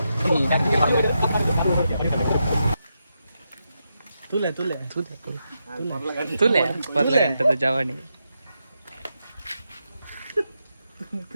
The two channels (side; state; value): both; inverted; correlation -0.85